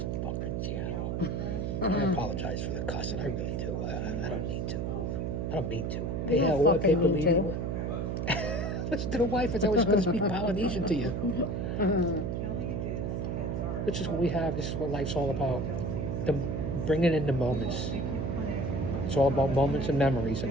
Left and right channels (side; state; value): right; noise; hum, 1 dB below the sound